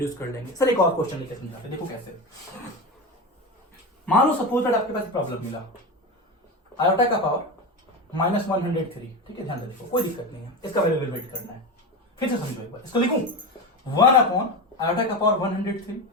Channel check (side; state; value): both; normal; correlation 0.20